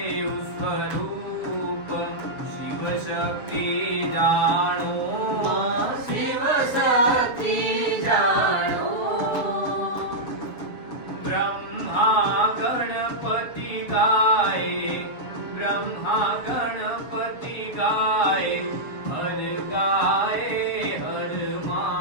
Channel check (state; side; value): late; right; 7.3 ms